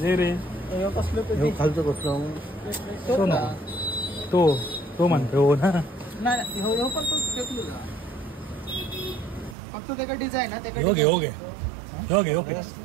जे रे यो कसलं ते खालचं कसलं तो ना तो म्हणतो हो ना नाही हो पण तो फेकलो का फक्त त्याचा डिझाईन आहे हो घे हो घे हो घे हो फिक्स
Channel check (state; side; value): drops out; left; at 9.6 s